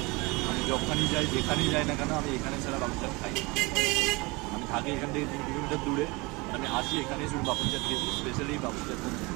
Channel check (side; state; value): left; quieter; 25.4 dB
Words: আমি যখনই যাই যেখানেই যাই না কেন আমি এখানে সেরা পাপড়ি চাট খাই। আমি থাকি এখান থেকে 3 কিলোমিটার দূরে, আমি আসি এখানে শুধু পাপড়ি চাট খেয়েছি। স্পেশালি পাপড়ি চাট